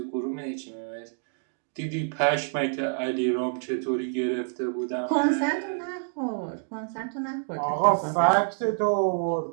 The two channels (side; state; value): left; silent; digital silence